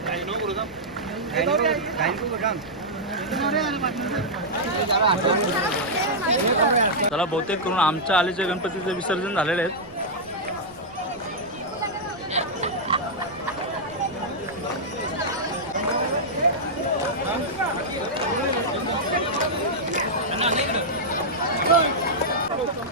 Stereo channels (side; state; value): right; noise; rumble, 26 dB below the sound